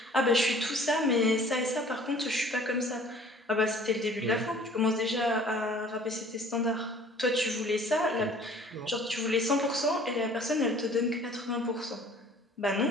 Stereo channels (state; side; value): normal; both; correlation 0.51